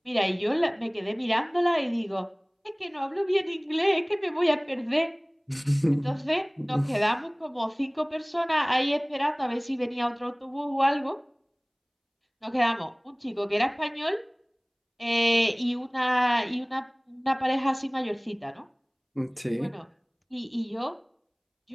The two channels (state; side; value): identical; both; correlation 1.00